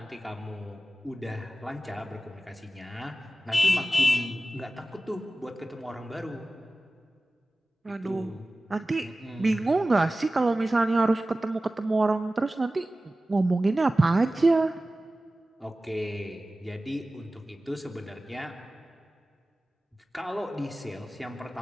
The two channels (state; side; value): normal; both; correlation 0.96